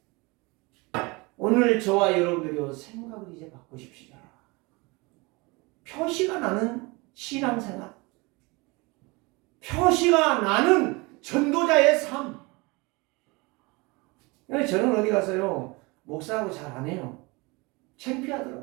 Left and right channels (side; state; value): left; quieter; 25.9 dB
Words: 오늘 저와 여러분들이 생각을 이제 바꾸십시다. 표시가 나는 신앙생활, 표시가 나는 전도자의 삶. 저는 어디 가서요 목사하고 잘 안 해요.